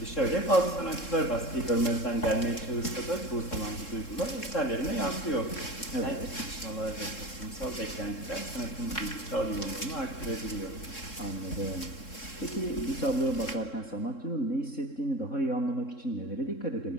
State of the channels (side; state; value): right; late; 3.7 ms